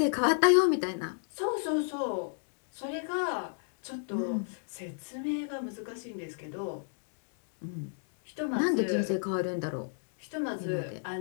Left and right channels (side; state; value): right; silent; digital silence